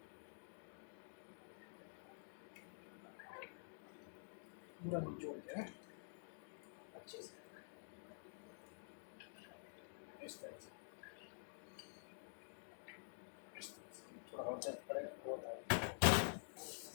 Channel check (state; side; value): silent; right; digital silence